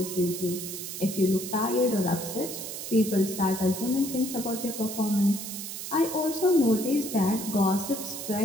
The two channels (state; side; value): noise; right; hiss, 7 dB below the sound